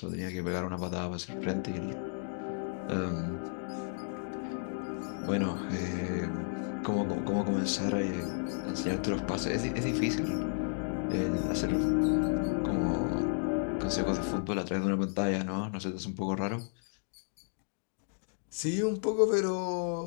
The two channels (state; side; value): silent; right; digital silence